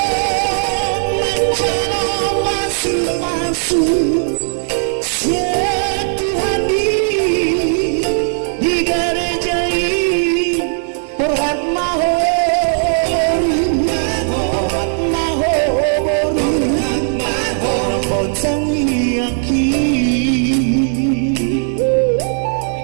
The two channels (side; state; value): left; silent; digital silence